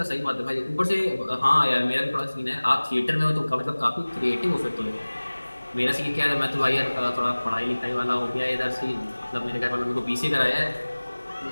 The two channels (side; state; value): both; inverted; correlation -1.00